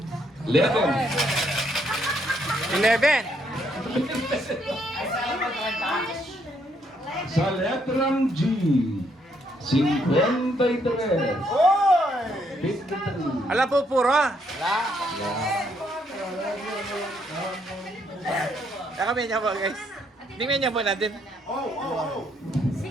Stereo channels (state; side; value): normal; both; correlation 0.72